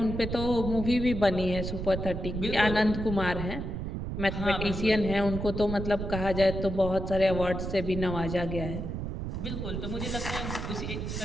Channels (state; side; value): noise; right; rumble, 4 dB below the sound